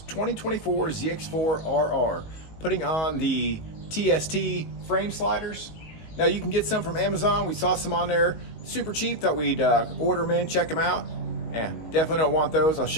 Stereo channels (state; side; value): late; right; 19 ms